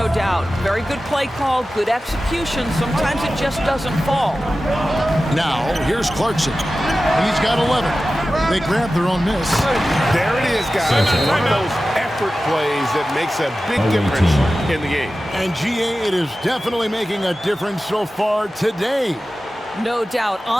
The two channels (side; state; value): both; normal; correlation 0.95